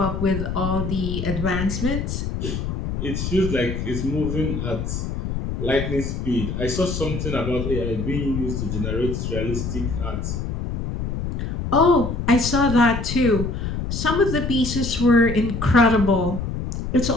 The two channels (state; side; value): noise; left; rumble, 4 dB below the sound